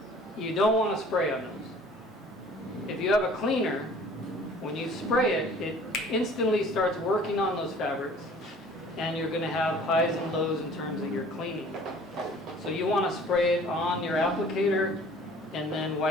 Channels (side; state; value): both; normal; correlation 0.50